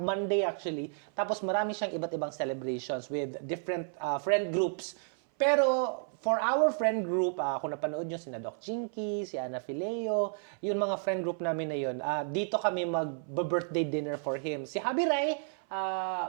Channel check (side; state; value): left; silent; 57 dB below the other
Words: actually, tapos marami siyang iba't ibang celebrations with different friend groups. Pero for our friend group, kung napanood nyo sina Doc Jinky, si Ana Fileo, yung mga friend group namin na yun, dito kami mag-birthday dinner for him. Si Habi Rai,